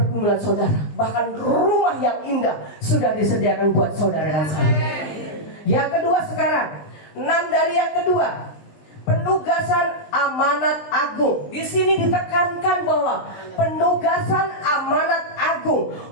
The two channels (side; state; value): right; late; 20 ms